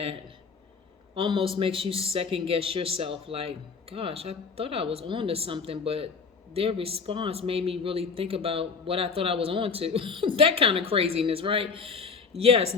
almost makes you second guess yourself, like, gosh, I thought I was on to something, but their response made me really think about what I thought I was on to. That kind of craziness, right? Yes,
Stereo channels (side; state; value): right; quieter; 5.2 dB